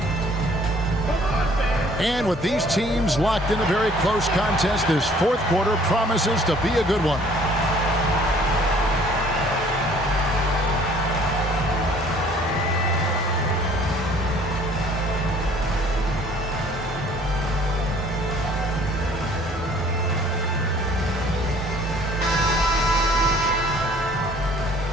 And with these teams locked in a very close contest, this fourth quarter promises to be a good one.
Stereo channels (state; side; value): normal; both; correlation 0.56